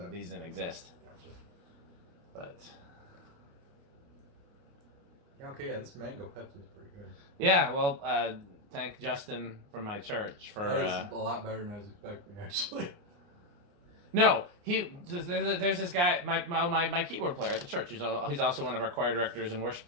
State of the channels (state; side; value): late; left; 28 ms